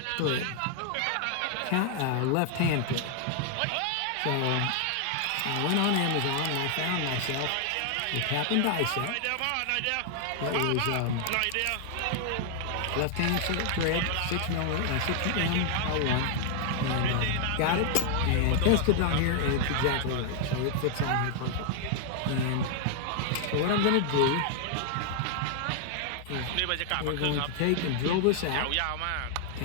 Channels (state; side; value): different; both; correlation 0.00